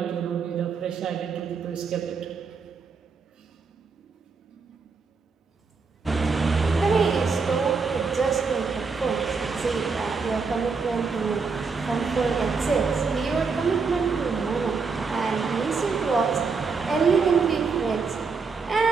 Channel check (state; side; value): quieter; left; 4.9 dB